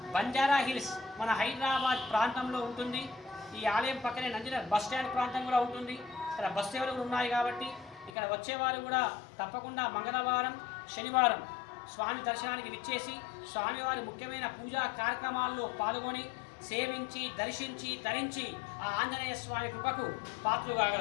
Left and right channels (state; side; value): drops out; right; at 8.1 s